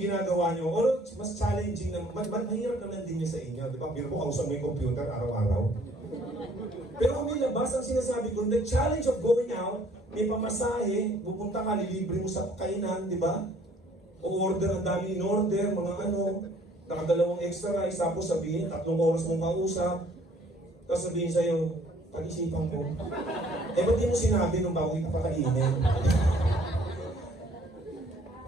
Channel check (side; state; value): both; normal; correlation 0.59